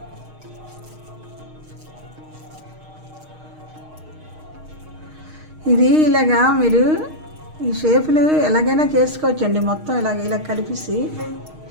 ఇది ఇలాగా మీరు ఈ షేపులు ఎలాగైనా చేసుకోవచ్చండి. మొత్తం ఇలా కలిపేసి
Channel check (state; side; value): late; left; 6.5 ms